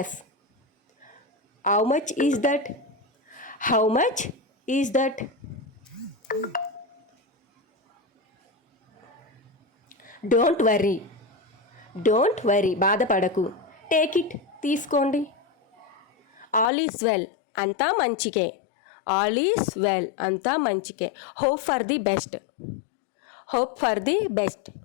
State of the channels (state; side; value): drops out; right; at 16.7 s